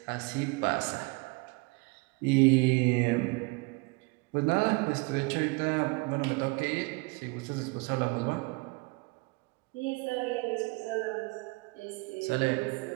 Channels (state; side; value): quieter; left; 27.5 dB